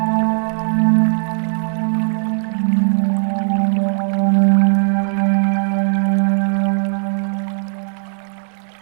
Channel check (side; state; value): left; silent; digital silence